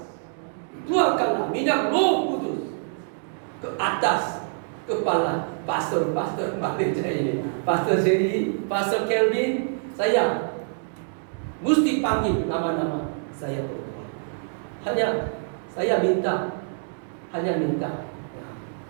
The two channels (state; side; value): silent; left; digital silence